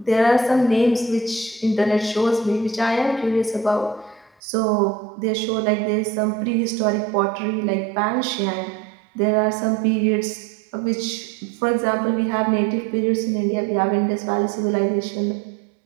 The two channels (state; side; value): drops out; left; at 4.4 s